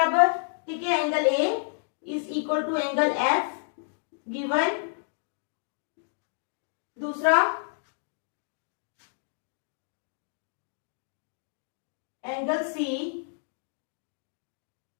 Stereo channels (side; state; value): right; silent; digital silence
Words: ठीक है। Angle A is equal to angle F given. दूसरा angle C,